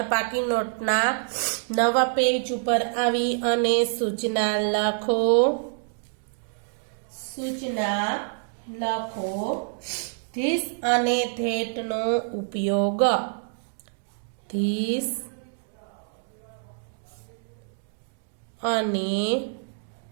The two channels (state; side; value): silent; left; digital silence